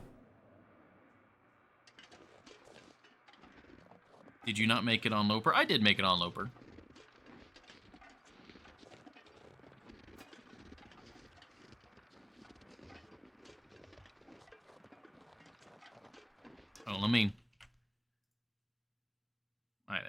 Did you not make it on Loper? I did make it on Loper. Oh, let me... Alright,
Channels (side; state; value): both; identical; correlation 1.00